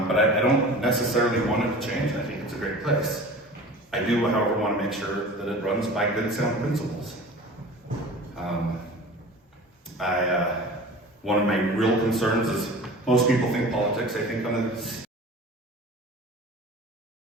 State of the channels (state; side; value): normal; both; correlation 0.39